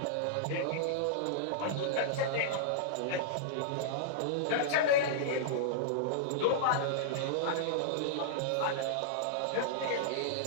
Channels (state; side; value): different; both; correlation -0.02